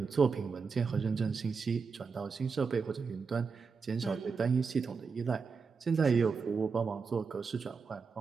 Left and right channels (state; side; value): quieter; left; 5.2 dB